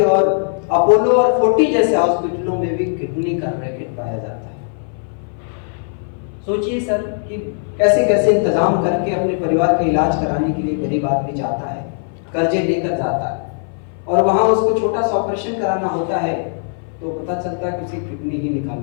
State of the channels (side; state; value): right; silent; 58 dB below the other